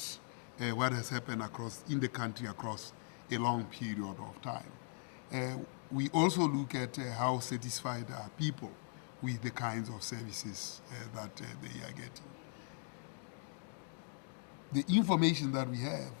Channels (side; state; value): right; silent; 51 dB below the other